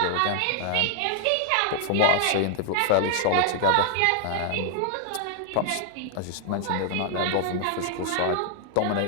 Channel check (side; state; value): both; different; correlation 0.00